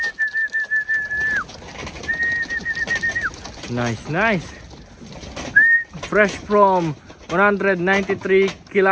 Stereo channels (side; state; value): both; identical; correlation 1.00